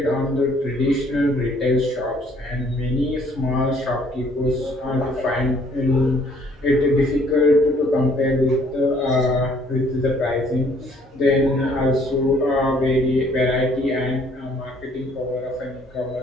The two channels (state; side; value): normal; both; correlation 0.61